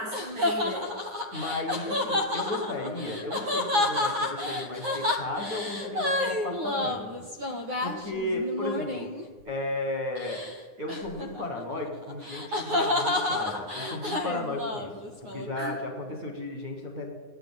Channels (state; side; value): late; left; 9.4 ms